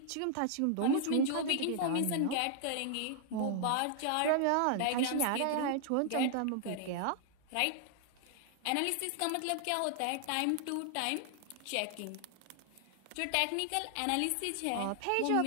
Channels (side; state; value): both; different; correlation 0.00